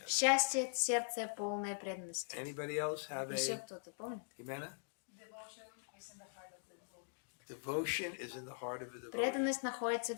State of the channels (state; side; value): silent; right; digital silence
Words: Yes. Счастье — это сердце, полное преданности. Anybody else have Еще a кто-то помнит? Jimena? Devotion is in the heart of the devotee. Devotion is in the heart of the devotee. Преданность находится